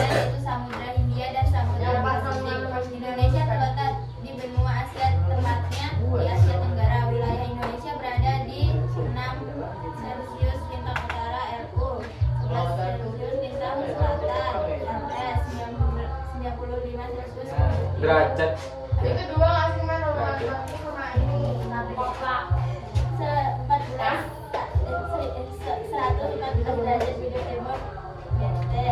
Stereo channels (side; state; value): both; identical; correlation 1.00